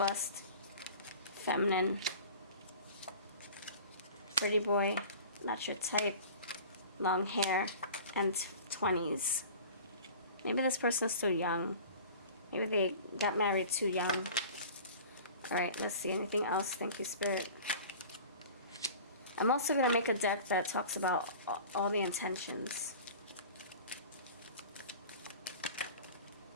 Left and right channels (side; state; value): both; inverted; correlation -0.41